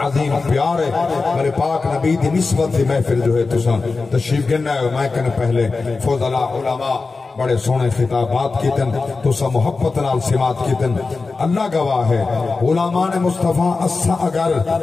عظیم پیار ہے. میرے پاک نبی دی نسبت دی محفل جو ہے تشریف گننا ہے. میں کہنے پہلے فضلاء علماء بڑے سونے خطابات کیتن تو سا محبت نال سمات کیتن. اللہ گواہ ہے علماء نے مصطفیٰ اسا اگر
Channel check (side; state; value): right; quieter; 4.0 dB